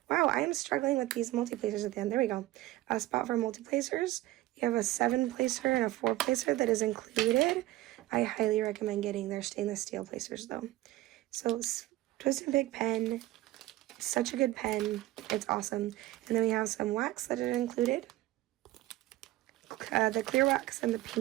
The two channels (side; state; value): left; quieter; 16.8 dB